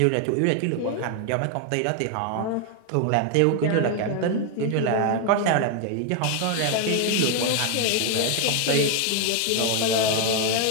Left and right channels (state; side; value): different; both; correlation 0.00